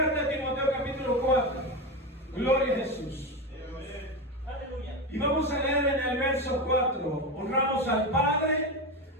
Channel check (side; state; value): both; normal; correlation 0.17